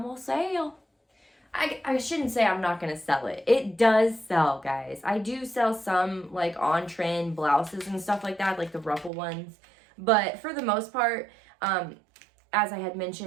gonna sell. I shouldn't say I'm not gonna sell it. It does sell, guys. I do sell some like on trend blouses and stuff like that, like the ruffle ones. But for the most part, as I had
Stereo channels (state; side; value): drops out; left; at 9.1 s